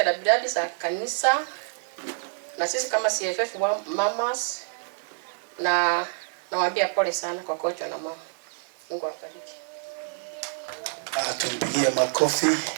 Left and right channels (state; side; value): silent; left; digital silence